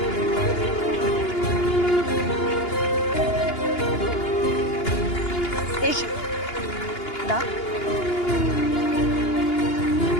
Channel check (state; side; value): late; right; 2.8 ms